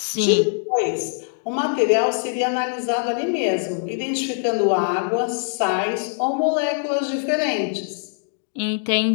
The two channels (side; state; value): right; silent; digital silence